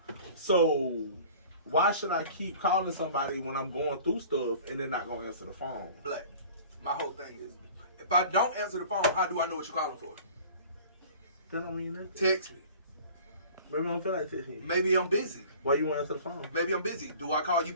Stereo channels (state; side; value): inverted; both; correlation -0.45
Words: So why should I keep calling somebody when I'm going through stuff and they're not going to answer the phone? Black, my whole thing is, if I don't answer the phone, how do I know what you're calling for? That don't mean nothing. Text me. Maybe I don't feel like texting you. Maybe I'm busy. Why you want to answer the phone? Maybe I'm busy. Do I call you